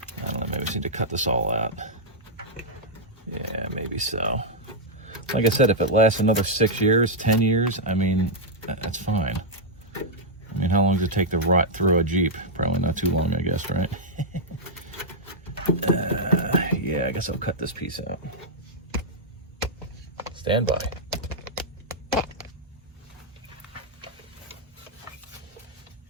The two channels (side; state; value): both; normal; correlation -0.06